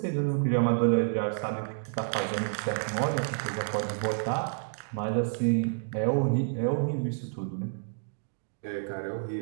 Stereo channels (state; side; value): silent; left; digital silence